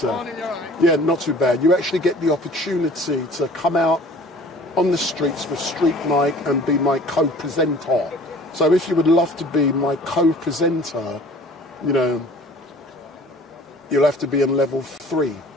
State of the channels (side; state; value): both; normal; correlation 0.48